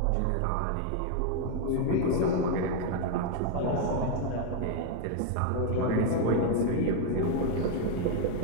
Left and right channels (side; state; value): both; different; correlation 0.00